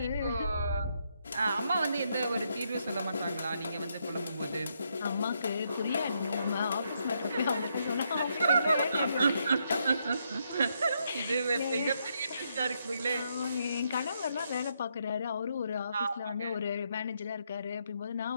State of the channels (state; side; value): inverted; both; correlation -0.77